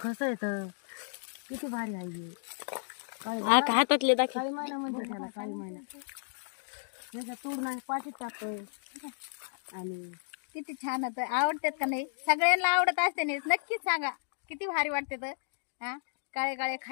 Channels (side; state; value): right; silent; digital silence